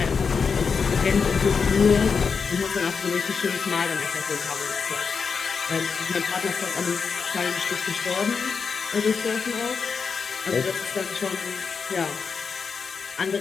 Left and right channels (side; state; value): right; quieter; 5.6 dB